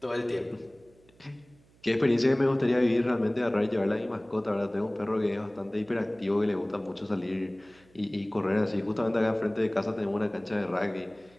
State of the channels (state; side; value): noise; right; hum, 30 dB below the sound